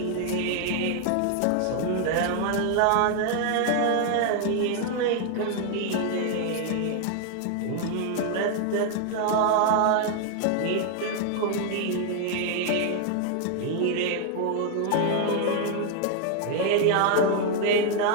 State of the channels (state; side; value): different; both; correlation 0.00